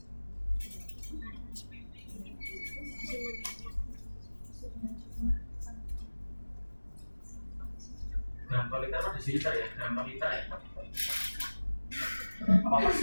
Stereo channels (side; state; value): both; inverted; correlation -1.00